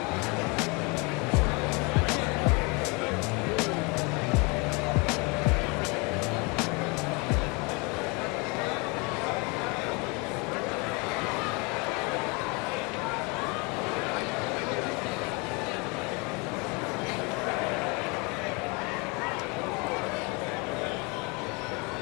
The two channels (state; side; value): quieter; right; 29.4 dB